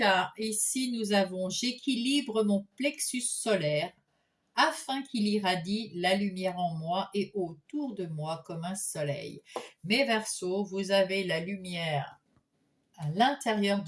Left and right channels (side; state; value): both; identical; correlation 1.00